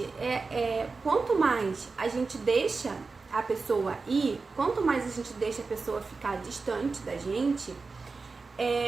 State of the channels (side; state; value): left; quieter; 4.2 dB